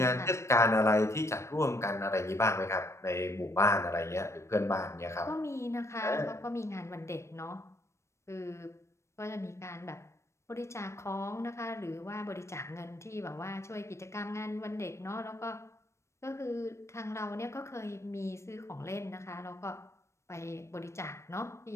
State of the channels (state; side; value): late; right; 0.13 ms